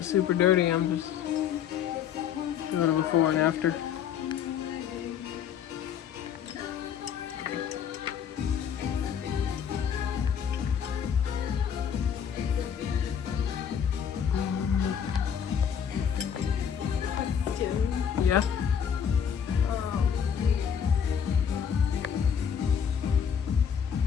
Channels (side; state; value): right; quieter; 8.0 dB